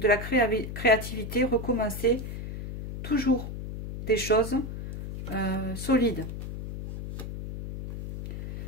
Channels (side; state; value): left; noise; hum, 8 dB below the sound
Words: la créativité, recommencer toujours des choses solides.